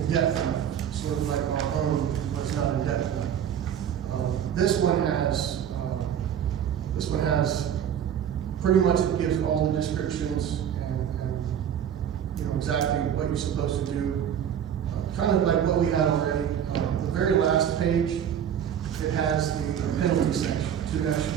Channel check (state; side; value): quieter; left; 9.2 dB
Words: depth enough, sort of like our own was not in depth enough. This one has pretty much, it gives all the descriptions and you know, exactly what you're supposed to do. Kind of like what we had already. The very last page, it has the penalty section,